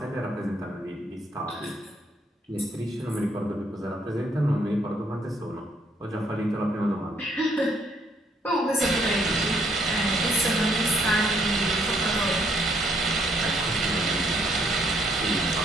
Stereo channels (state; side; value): normal; both; correlation 0.69